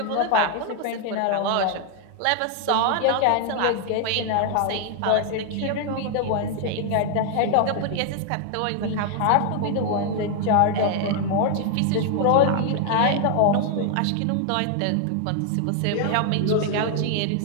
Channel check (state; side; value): different; both; correlation 0.00